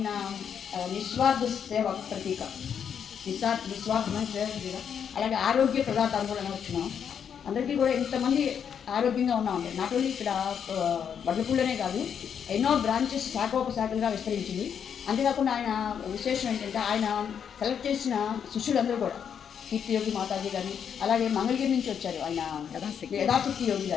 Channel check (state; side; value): quieter; right; 7.8 dB